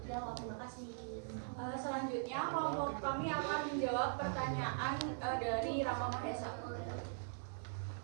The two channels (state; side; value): silent; left; 50 dB below the other